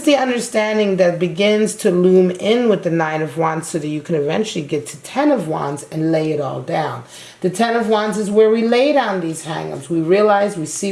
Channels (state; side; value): identical; both; correlation 1.00